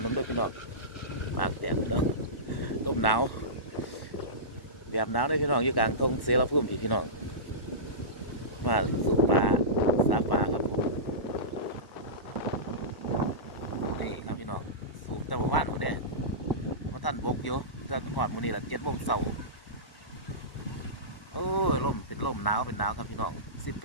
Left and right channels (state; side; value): late; right; 1.0 ms